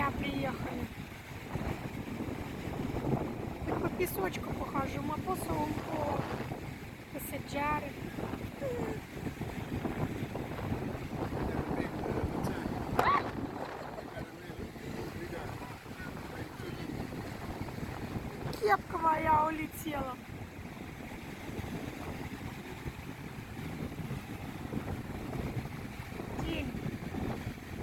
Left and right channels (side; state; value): both; identical; correlation 1.00